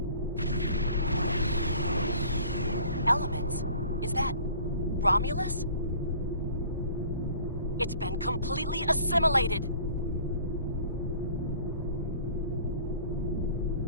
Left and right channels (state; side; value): inverted; both; correlation -0.49